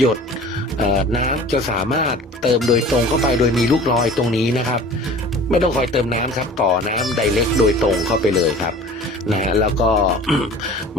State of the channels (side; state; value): both; normal; correlation 0.43